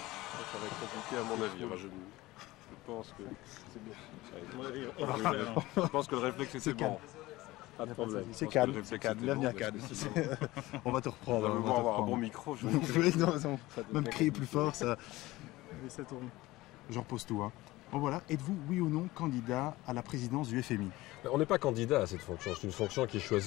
va être compliqué à mon avis. Enfin, je pense que c'est bien. Je pense que le réflexe était bon. Pas de problème. C'est calme, c'est calme, bienvenue à Cannes. On va te reprendre. On va avoir un bon micro. Oui, non, même crier plus fort, ça tourne. Je repose tout. Hein. Bon voilà, êtes-vous oui ou non candidat à la présidence du FMI? On n'est pas candidat à cette fonction, c'est une fonction qui est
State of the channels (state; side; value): quieter; right; 18.8 dB